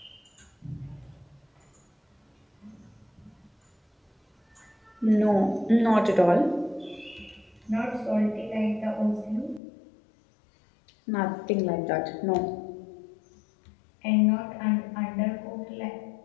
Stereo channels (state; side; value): drops out; right; at 9.6 s